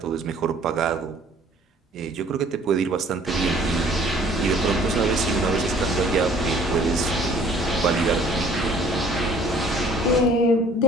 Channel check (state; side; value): normal; both; correlation 0.54